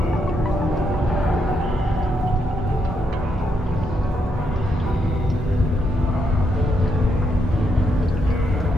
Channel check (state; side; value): normal; both; correlation 0.79